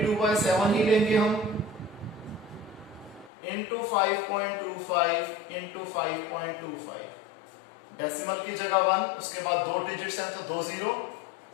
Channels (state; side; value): drops out; right; at 3.3 s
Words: ही लेंगे हम, इंटू 5.25 इंटू 5.25। डेसिमल की जगह 1, उसके बाद 2 डिजिट्स हैं तो 2 0।